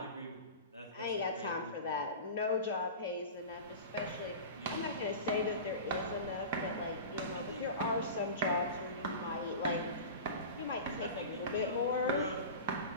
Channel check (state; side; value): inverted; both; correlation -0.32